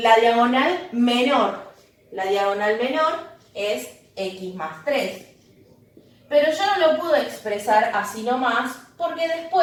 diagonal menor. La diagonal menor es x más 3. Pero yo no lo puedo expresar así nomás, porque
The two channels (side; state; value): both; identical; correlation 1.00